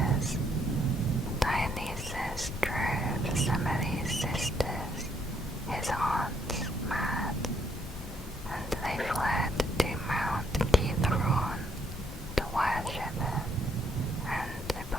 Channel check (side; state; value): both; normal; correlation 0.71